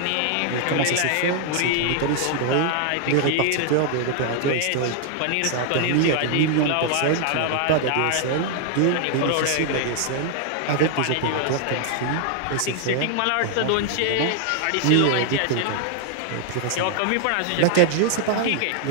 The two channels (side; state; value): both; different; correlation 0.00